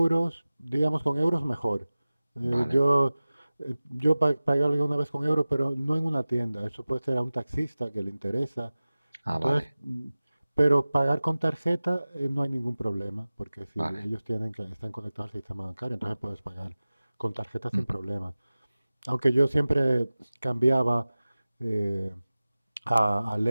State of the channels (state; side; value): inverted; both; correlation -0.97